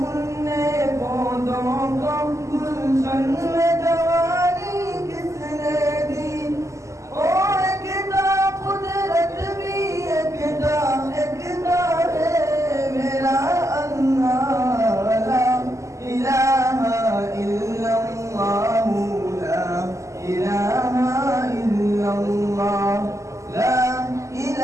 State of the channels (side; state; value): left; late; 0.15 ms